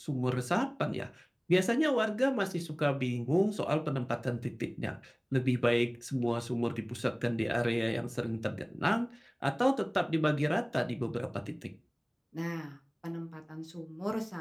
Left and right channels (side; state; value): both; identical; correlation 1.00